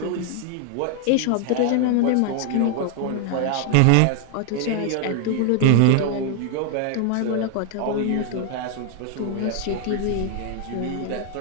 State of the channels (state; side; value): different; both; correlation 0.00